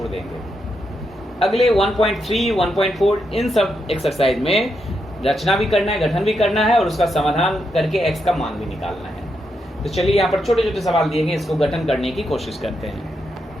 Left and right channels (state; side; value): normal; both; correlation 0.82